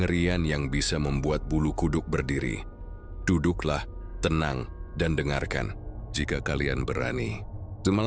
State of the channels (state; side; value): identical; both; correlation 1.00